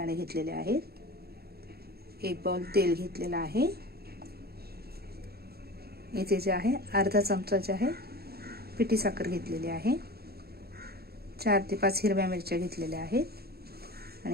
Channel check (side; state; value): left; late; 0.46 ms